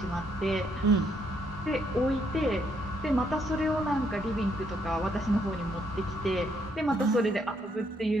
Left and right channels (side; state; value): both; normal; correlation 0.72